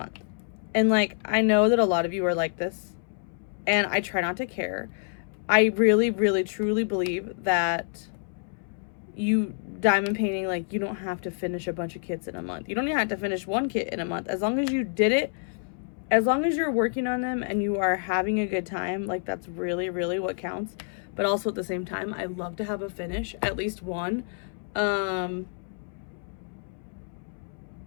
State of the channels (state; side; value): silent; right; 60 dB below the other